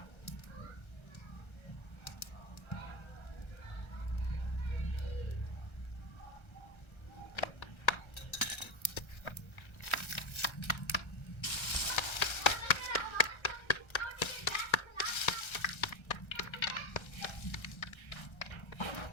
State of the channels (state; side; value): late; right; 1.3 ms